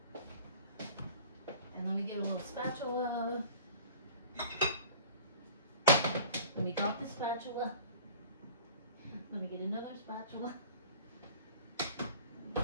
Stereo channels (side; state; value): both; inverted; correlation -0.44